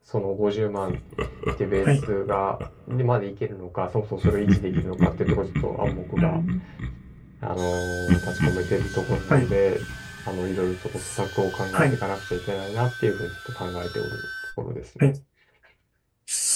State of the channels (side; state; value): both; identical; correlation 1.00